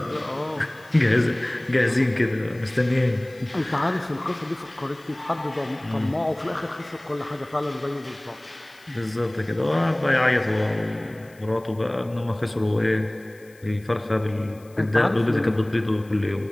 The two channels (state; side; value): noise; left; hiss, 28 dB below the sound